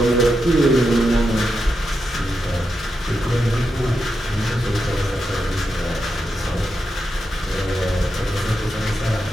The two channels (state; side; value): normal; both; correlation 0.86